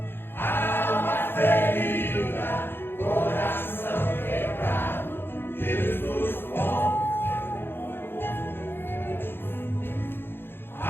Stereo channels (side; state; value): right; late; 0.10 ms